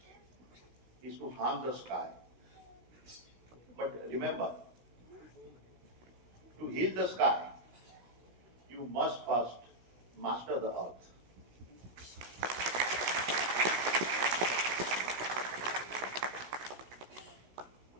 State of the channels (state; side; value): late; left; 16 ms